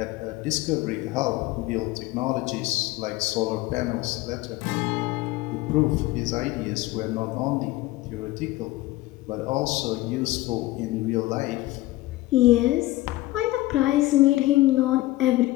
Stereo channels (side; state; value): right; quieter; 18.0 dB